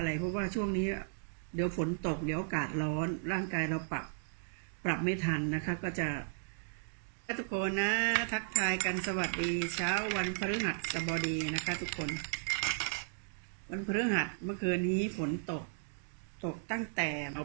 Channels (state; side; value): silent; left; digital silence